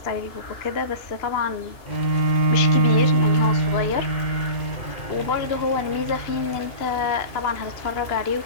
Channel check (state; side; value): late; right; 2.4 ms